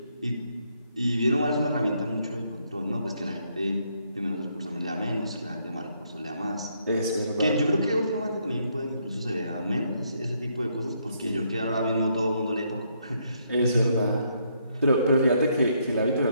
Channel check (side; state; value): both; inverted; correlation -0.73